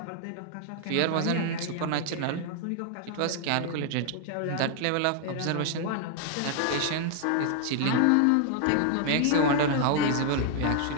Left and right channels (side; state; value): both; different; correlation 0.00